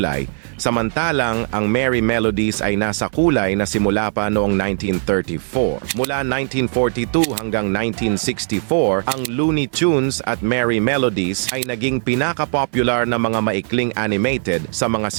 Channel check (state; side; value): silent; left; 66 dB below the other